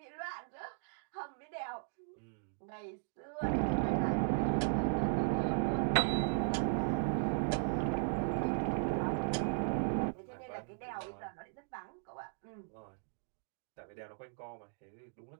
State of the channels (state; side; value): silent; left; digital silence